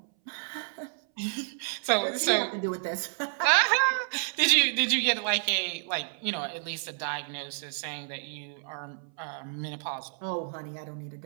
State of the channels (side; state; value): left; silent; 58 dB below the other